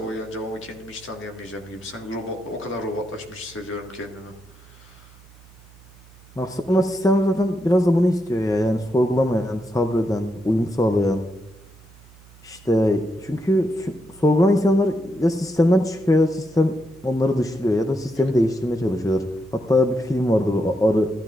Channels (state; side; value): noise; right; hum, 25 dB below the sound